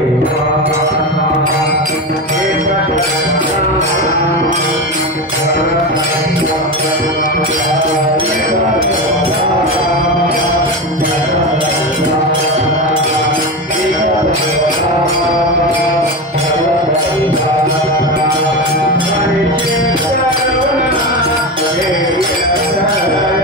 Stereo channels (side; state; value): both; normal; correlation 0.20